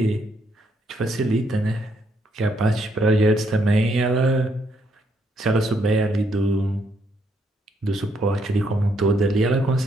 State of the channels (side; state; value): both; normal; correlation 0.73